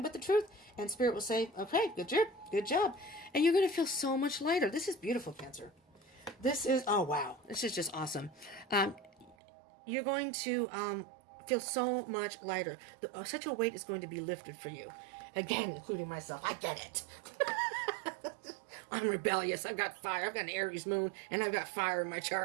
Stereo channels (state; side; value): drops out; left; at 9.3 s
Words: but the truth. And Spirit will say, okay, good job. And you're going to feel so much lighter. This is beautiful, Cancer. This is, oh, wow. This is just awesome. You're going to feel so much lighter. Such a weight is going to be lifted for you. Again, including myself. I get it. I'm rebellious. I've got fire. I've got an Aries moon, and I've got fire in my